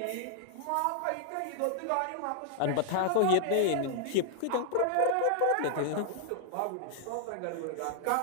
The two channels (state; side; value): different; both; correlation 0.00